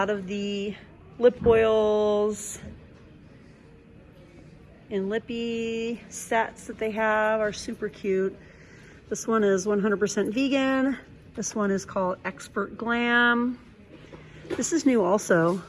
of the lip oils and lippy sets that they have are super cute. This one is 100% vegan. This one is called Expert Glam. This is new also.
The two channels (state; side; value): identical; both; correlation 1.00